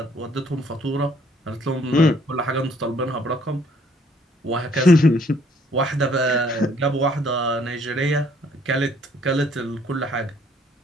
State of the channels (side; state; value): both; normal; correlation 0.63